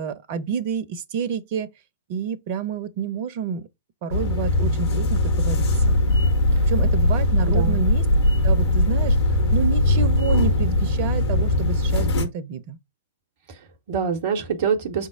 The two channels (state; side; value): inverted; both; correlation -0.49